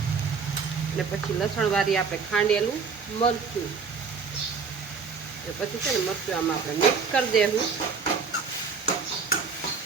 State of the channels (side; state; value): left; quieter; 5.4 dB